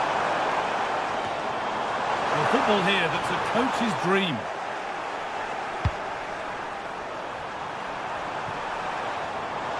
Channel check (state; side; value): identical; both; correlation 1.00